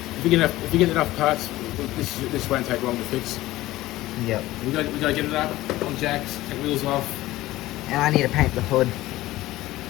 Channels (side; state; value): right; quieter; 17.0 dB